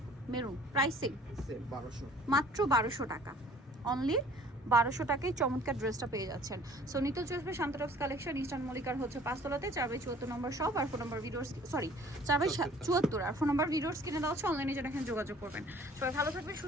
মেরুন, প্রাইসিং সেম 1200। মাত্র 1200 টাকা। অনলি 1200 টাকায় চমৎকার ড্রেসটা পেয়ে যাচ্ছেন। সো নিতে চলবে শান্তরক্স কালেকশন, ইস্টার্ন মল্লিকার হচ্ছে 5 তলাতে, 4/74 নম্বর শপ। আর ফোন নম্বর ভিডিওস, সরি 4/74, আর ফোন নম্বর ভিডিওস কিনে দেওয়া হচ্ছে। অনলাইনে যেন এখানে যোগাযোগ করবেন। সবাই ভালো থাকবেন,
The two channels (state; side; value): normal; both; correlation 0.52